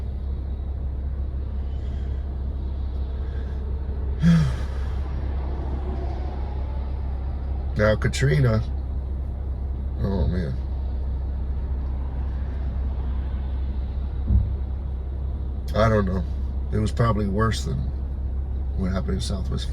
Now Katrina, oh man. I don't know. It was probably worse than what happened in Southwest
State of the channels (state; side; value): identical; both; correlation 1.00